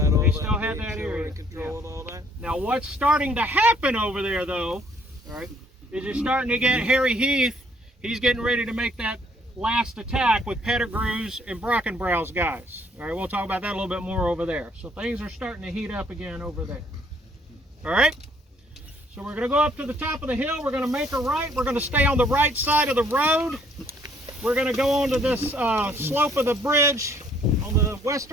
all that. They still had that control area. and control and all that. Now what's starting to happen over there though, all right, is you're starting to get Harry Heath. He's getting ready to make that last attack with Pettigrew's and Brockenbrow's guys. All right, we'll talk about that a little bit more over there. So things are starting to heat up again over there. All right, so we're going to go up to the top of the hill. We're going to make a right. We're going to stay on the right side of the road. We're going to go onto this slope of the bridge on the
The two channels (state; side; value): normal; both; correlation 0.64